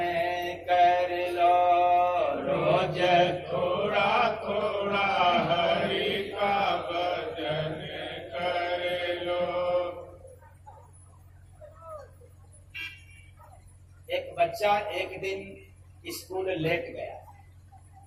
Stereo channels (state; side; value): identical; both; correlation 1.00